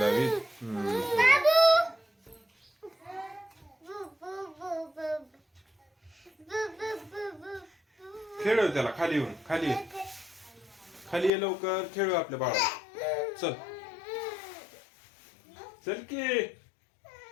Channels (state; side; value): drops out; right; at 11.3 s